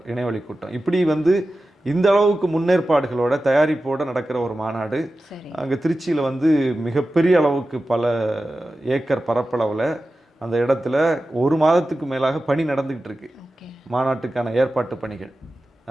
இணையவழி கூட்டம். இப்படி வந்து இந்த அளவுக்கு முன்னேற்பாடுகளோட தயாரிப்போட நடக்கிற ஒரு மாநாடு அங்கே திருச்சியில் வந்து மிகப்பெரிய அளவுக்கு பல ஏக்கர் பரப்பளவில் அந்த இடத்துல ஒரு மாதத்துக்கு மேலாக பணி நடந்துகிட்டு இருக்கு. மாநாட்டுக்கான ஏற்பாட்டு பணிகள்,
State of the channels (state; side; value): normal; both; correlation 0.94